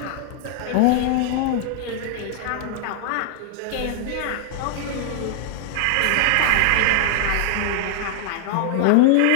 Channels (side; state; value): both; different; correlation 0.00